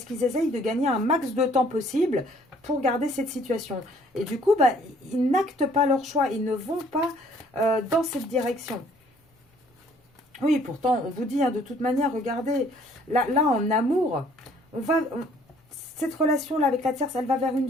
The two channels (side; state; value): both; normal; correlation 0.59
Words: qu'ils essayent de gagner un max de temps possible pour garder cette situation. Et du coup, bah, ils n'actent pas leur choix, ils ne vont pas dans cette direction. Oui, pourtant, on vous dit, hein, de toute manière, regardez, là en amour, cette relation-là avec la tierce, elle va vers